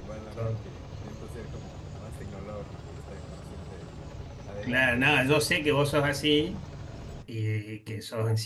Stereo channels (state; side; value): identical; both; correlation 1.00